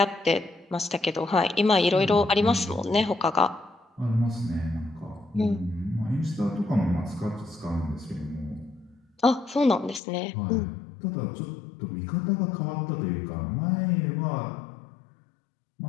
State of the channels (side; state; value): right; drops out; at 10.0 s